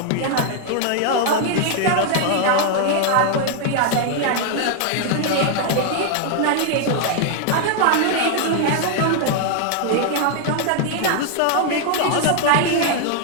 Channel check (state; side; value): different; both; correlation 0.00